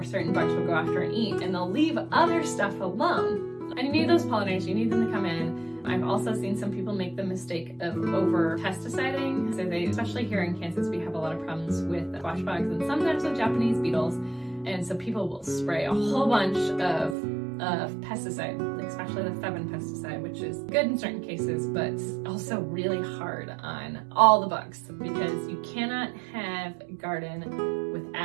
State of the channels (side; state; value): left; drops out; at 17.2 s